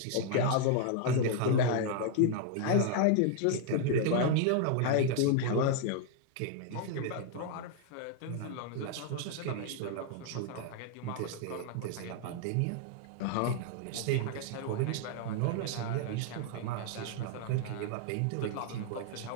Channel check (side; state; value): both; different; correlation 0.00